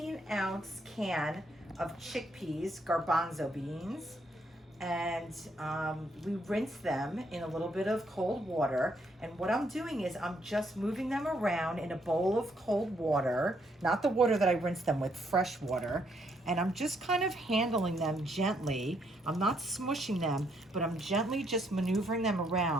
can of chickpeas, garbanzo beans, and we rinse them in a little bit of cold water. And what I'm doing is I'm just moving them around in a bowl of cold water, not the water that I rinsed them with, fresh water. And I'm just kind of handling them gently. I'm not smushing them, but I'm gently just maneuvering them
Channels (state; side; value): normal; both; correlation 0.72